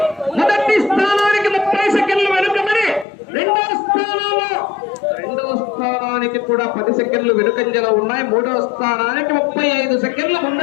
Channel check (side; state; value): right; drops out; at 3.1 s